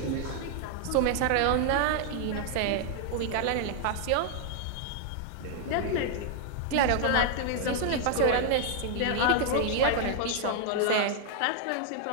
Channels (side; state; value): both; different; correlation 0.00